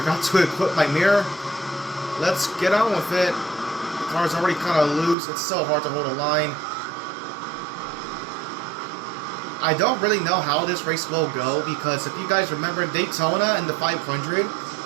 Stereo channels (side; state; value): left; drops out; at 5.2 s